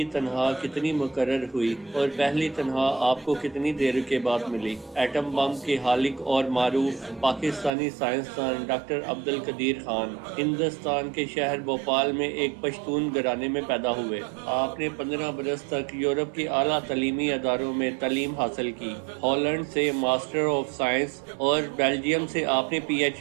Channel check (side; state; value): left; drops out; at 7.7 s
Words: تنخواہ کتنی مقرر ہوئی اور پہلی تنخواہ آپ کو کتنی دیر کے بعد ملی؟ ایٹم بم کے خالق اور معروف پاکستانی سائنسدان ڈاکٹر عبدالقدیر خان ہندوستان کے شہر بھوپال میں ایک پشتون گھرانے میں پیدا ہوئے۔ آپ نے 15 برس تک یورپ کے اعلیٰ تعلیمی اداروں میں تعلیم حاصل کی۔ ہالینڈ سے ماسٹر آف سائنس اور بیلجیم سے آپ نے پی ایچ